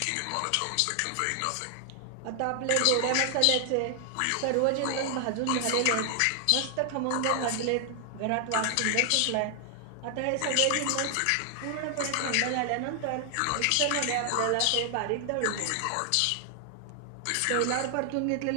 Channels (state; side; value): different; both; correlation 0.00